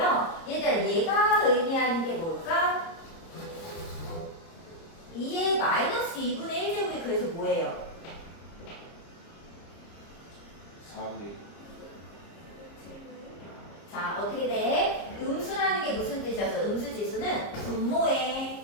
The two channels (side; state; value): right; late; 30 ms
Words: 얘들아 얘가 의미하는 게 뭘까? 2의 마이너스 2분의 1제곱이 그래서 뭐예요? 4의 자, 어떻게 돼? 음수라는 게 무슨 뜻이었어? 음수지수는